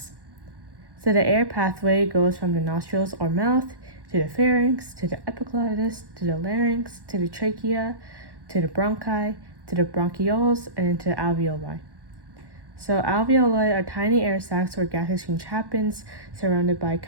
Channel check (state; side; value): late; left; 1.1 ms